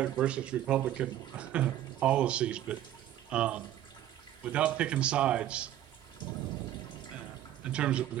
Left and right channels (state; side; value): quieter; left; 12.4 dB